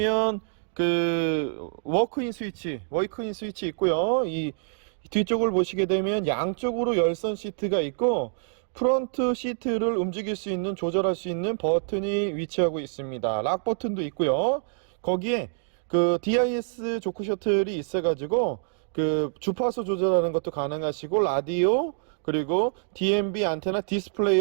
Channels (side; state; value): left; silent; digital silence